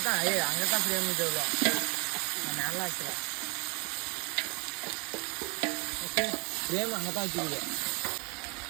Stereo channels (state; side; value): quieter; left; 32.3 dB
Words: ஃப்ரேம் நல்லா வச்சுக்கலாம். ஓகே ஃப்ரேம் அங்கதான் வச்சுக்கல.